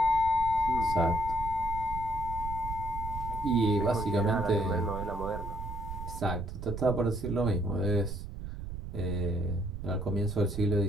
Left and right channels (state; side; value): noise; right; rumble, 7 dB below the sound